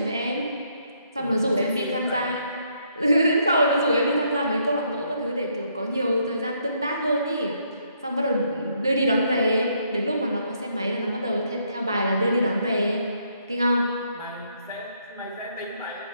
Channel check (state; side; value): inverted; both; correlation -0.72